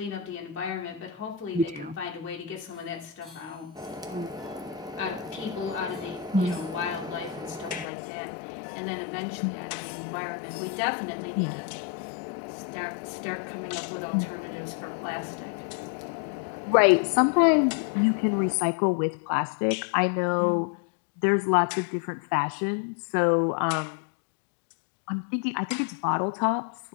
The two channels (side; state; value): right; drops out; at 7.9 s